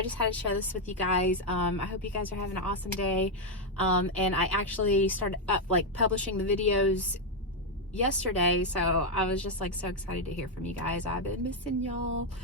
just had to share this with you guys. I hope you guys are having an awesome day. And I actually started up like publishing the videos yesterday, so I was just like so excited to hear from you guys. I've been missing y'all.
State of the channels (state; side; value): normal; both; correlation 0.02